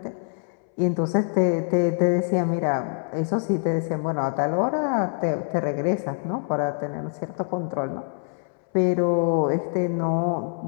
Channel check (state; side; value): silent; right; 62 dB below the other